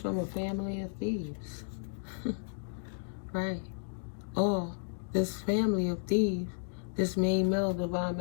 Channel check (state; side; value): silent; right; digital silence